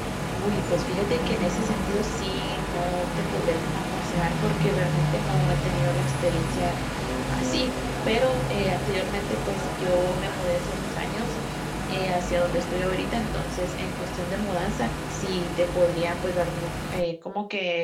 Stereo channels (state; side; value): identical; both; correlation 1.00